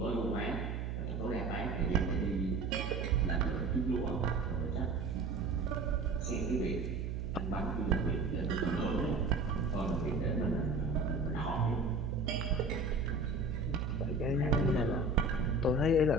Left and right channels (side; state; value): right; noise; hum, 3 dB below the sound